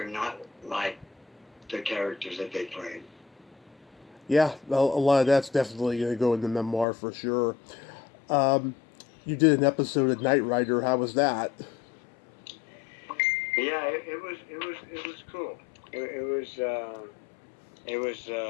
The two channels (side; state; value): right; drops out; at 6.9 s